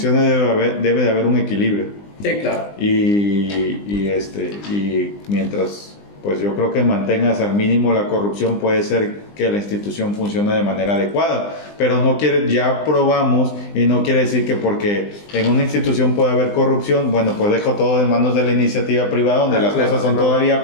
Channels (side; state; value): right; late; 20 ms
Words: debe de haber un equilibrio. Sí, claro. Y mientras, pues yo creo que mantengas al mínimo la corrupción, puede ser que la institución funcione de manera adecuada, pero ya probamos, y no quiere decir que porque en una institución puede haber corrupción, bueno, pues dejo todo en manos de la iniciativa privada, donde las cosas son